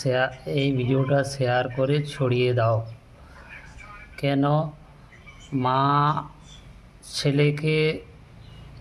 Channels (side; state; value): both; identical; correlation 1.00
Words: এই ভিডিওটা শেয়ার করে ছড়িয়ে দাও। কেন মা ছেলেকে